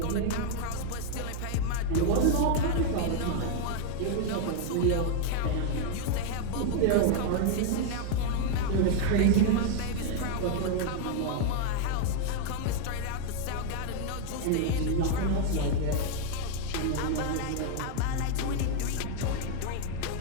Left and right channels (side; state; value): both; different; correlation 0.00